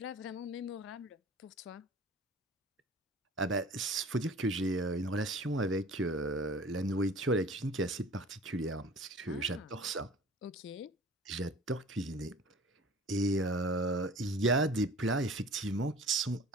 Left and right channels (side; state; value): both; normal; correlation 0.44